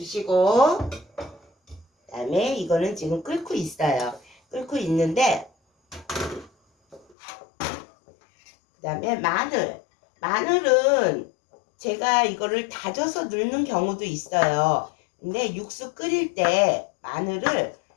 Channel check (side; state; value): right; drops out; at 7.2 s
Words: 그 다음에 이거는 지금 끓고 있어요. 끓고 있는데, 그 다음에 마늘은 제가 이거를 다져서 넣는 경우도 있어요. 근데 육수 끓일 때 마늘을